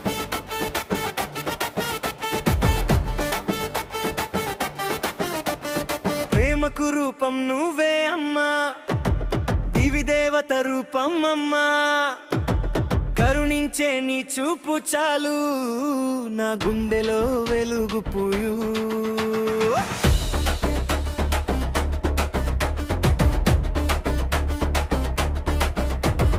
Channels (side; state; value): both; identical; correlation 1.00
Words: ప్రేమకు రూపం నువ్వే అమ్మా, దివి దేవత రూపం అమ్మా. కరుణించే నీ చూపు చాలు, నా గుండెలో వెలుగు పూయు.